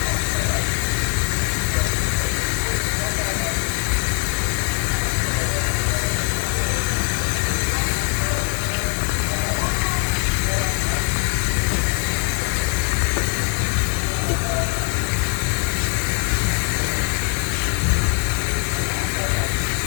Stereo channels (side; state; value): right; quieter; 34.6 dB